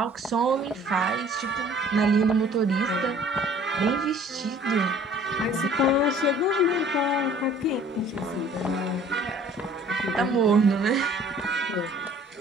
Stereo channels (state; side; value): normal; both; correlation 0.52